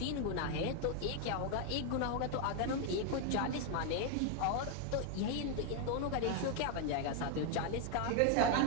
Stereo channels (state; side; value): different; both; correlation 0.01